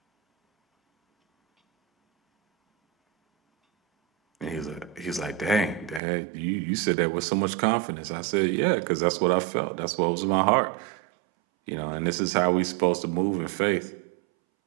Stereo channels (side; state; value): left; drops out; at 6.0 s